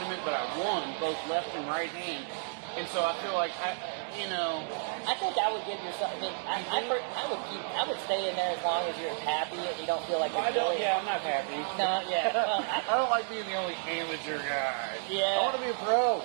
but I won both left and right hand. And so I feel like I think I would give yourself. I mean, I would stay in there as long as you're happy and you don't feel like you're I'm not happy. No, yeah. Well, I don't like being the only amateur guy. Yeah. I want to be a pro.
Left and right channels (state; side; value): silent; left; digital silence